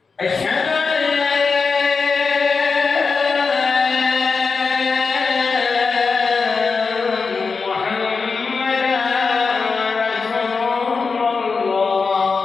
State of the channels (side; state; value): right; quieter; 4.8 dB